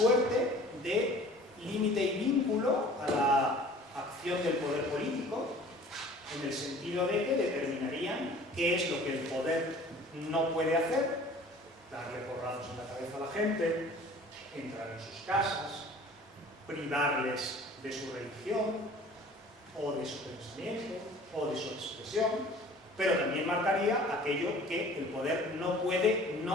de límite y vínculo a la acción del poder político, en el sentido de que determinarían qué es lo que el poder no puede hacer: darle porrazos en la cabeza a la gente, entrar en sus casas, privarles de su religión, o de su pensamiento, o de su expresión, pero también marcaría aquello que el poder no puede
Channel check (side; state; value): both; normal; correlation 0.48